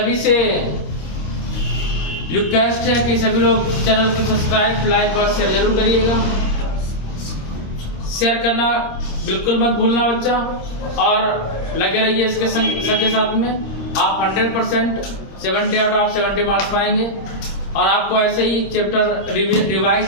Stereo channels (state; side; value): late; right; 26 ms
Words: से रिक्वेस्ट है कि सभी लोग चैनल को सब्सक्राइब लाइक और शेयर जरूर करिएगा, शेयर करना बिल्कुल मत भूलना बच्चा, और लगे रहिए इसके सबके साथ में। आप 100% 70 आउट ऑफ 70 मार्क्स पाएंगे और आपको ऐसे ही चैप्टर रिवाइज